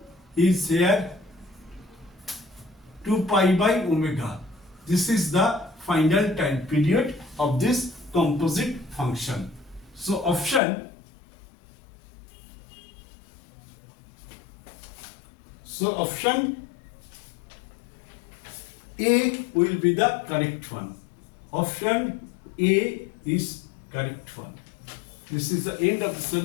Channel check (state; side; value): drops out; right; at 10.6 s